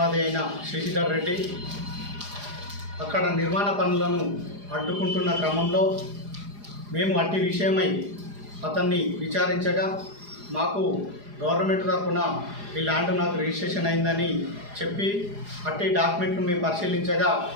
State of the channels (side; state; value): left; late; 4.9 ms